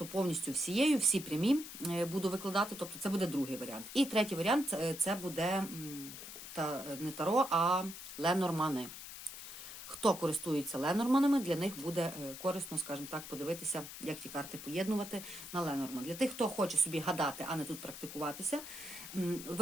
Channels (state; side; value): noise; left; hiss, 11 dB below the sound